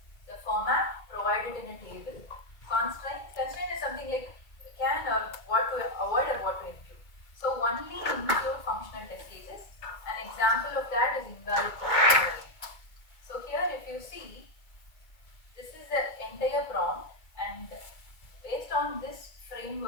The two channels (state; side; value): late; right; 2.2 ms